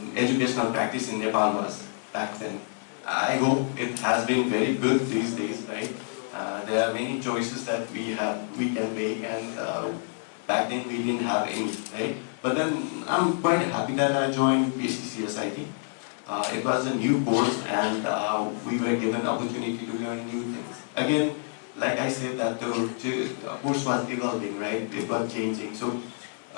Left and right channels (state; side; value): silent; right; 60 dB below the other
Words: educational practice in Nepal was back then. I hope it has been very good these days, right? There are many choices that we can make, and back then we didn't have any, right? But then I'm quite happy that I joined PCCSIT. It was a new course, and we were given opportunity to learn new things. Again, like I said, that the course was evolving, right? It was changing. So